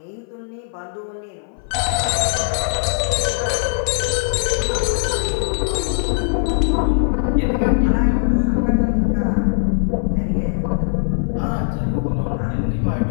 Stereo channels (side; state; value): right; silent; 59 dB below the other